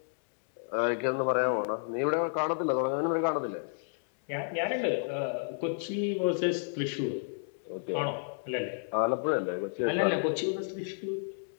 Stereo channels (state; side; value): silent; right; digital silence